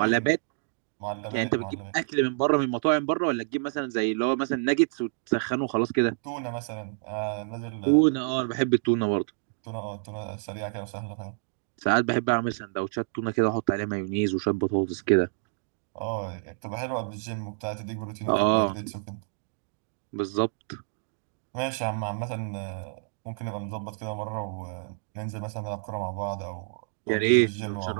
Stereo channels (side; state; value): left; silent; digital silence